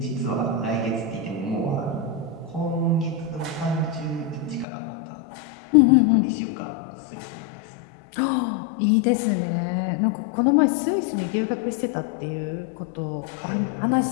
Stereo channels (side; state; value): right; drops out; at 4.7 s